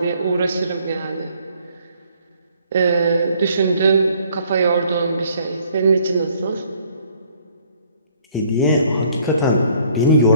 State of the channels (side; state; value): both; inverted; correlation -0.62